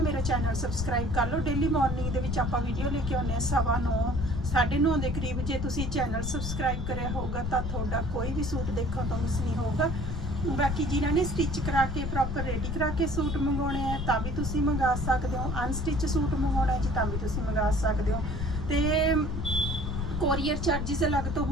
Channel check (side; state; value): left; noise; rumble, 4 dB below the sound